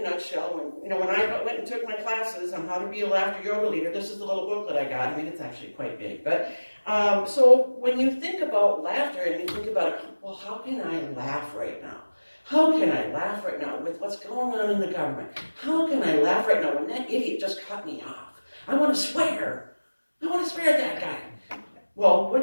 nutshell. When I went and took my classes on how to be a laughter yoga leader, this is the little booklet I got. I mean, it's actually quite big. But so when you think about laughter and you think about, well, how can I laugh right now? How can I laugh right now with what's going on in the government? How can I laugh right now when that idiot just cut me off? I want to swear. I want to swear at that guy. Well,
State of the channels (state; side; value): inverted; both; correlation -1.00